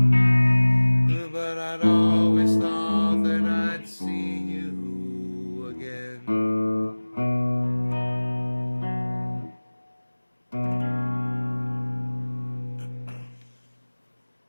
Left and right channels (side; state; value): both; inverted; correlation -1.00